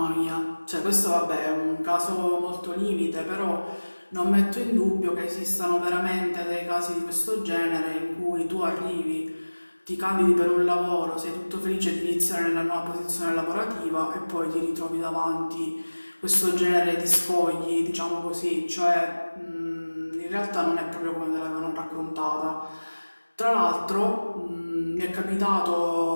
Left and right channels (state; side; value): inverted; both; correlation -1.00